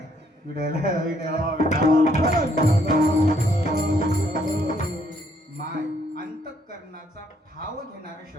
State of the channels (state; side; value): normal; both; correlation 0.69